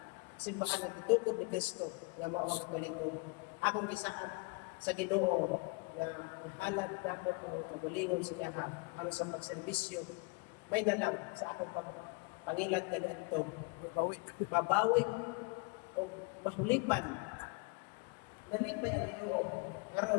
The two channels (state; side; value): quieter; right; 28.3 dB